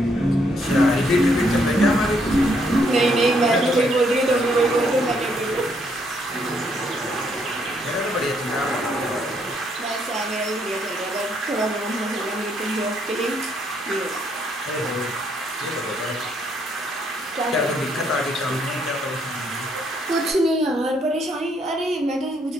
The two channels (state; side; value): normal; both; correlation 0.72